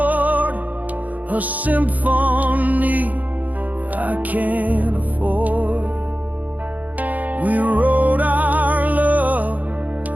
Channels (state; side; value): late; left; 0.078 ms